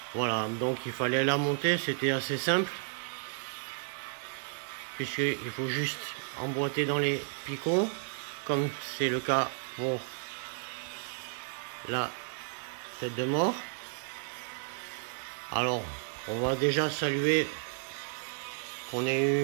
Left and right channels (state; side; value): silent; left; digital silence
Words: Voilà, donc il fallait la monter, c'était assez simple. Puisqu'il faut juste emboîter dans les picots, comme c'est le cas pour la tête de mort. Alors, on va déjà saluer qu'on ait